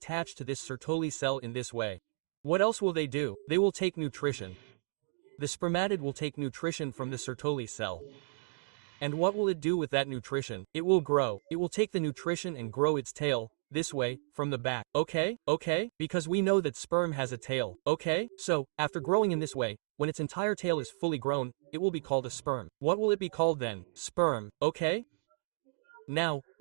to this Sertoli cell in this way. What else will they do? They will take nutrition. The spermatid will take nutrition from the Sertoli cell. And what will it do with that nutrition? It will grow. It will take the nutrition and grow its tail, this way, from the back. Okay? Because we know that sperm has a tail. Okay? So, after growing in this way, when its entire tail is fully grown, it will be called a sperm. What will it be called then? Sperm. Okay? Now,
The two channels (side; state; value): left; silent; digital silence